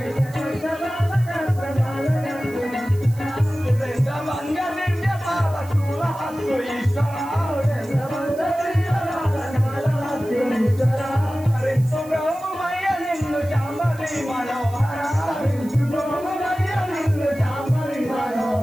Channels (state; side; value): noise; right; hiss, 22 dB below the sound